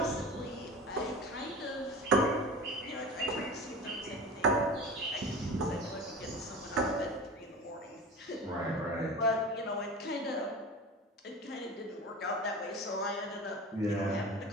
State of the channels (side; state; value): both; normal; correlation 0.33